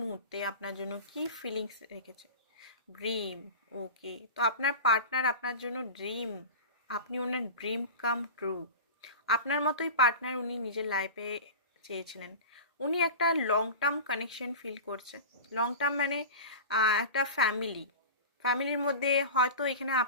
মুহূর্তে আপনার জন্য কি ফিলিংস রেখেছে। ড্রিম। ওকে, তো আপনার পার্টনার আপনার জন্য ড্রিম। আপনি ওনার ড্রিম কাম ট্রু। আপনার মতোই পার্টনার উনি নিজের লাইফে চেয়েছিলেন। উনি একটা লং টার্ম কানেকশন ফিল করছে। লং টার্ম মানে একটা ফ্যামিলির মধ্যে হয়তো এখানে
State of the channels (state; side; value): inverted; both; correlation -0.31